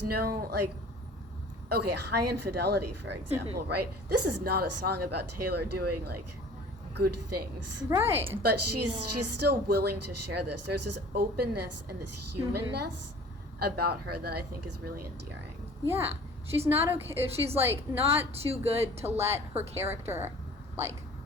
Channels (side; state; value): both; normal; correlation 0.46